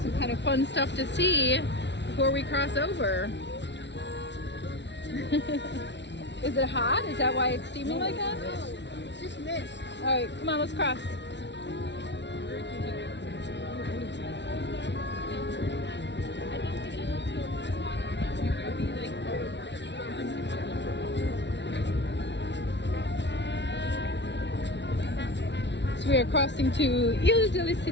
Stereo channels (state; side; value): late; right; 0.51 ms